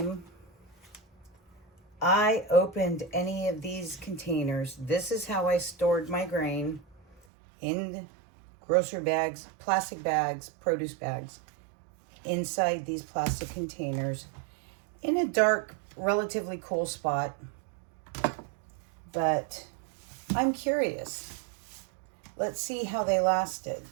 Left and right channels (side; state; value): left; drops out; at 7.2 s